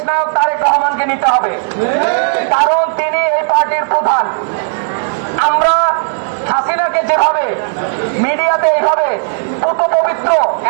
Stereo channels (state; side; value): silent; left; digital silence